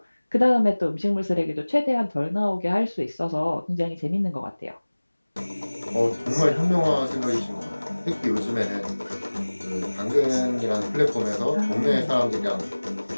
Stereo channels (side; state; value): both; inverted; correlation -1.00